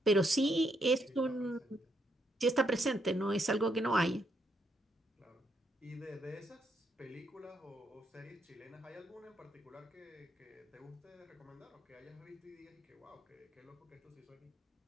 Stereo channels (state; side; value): normal; both; correlation 0.76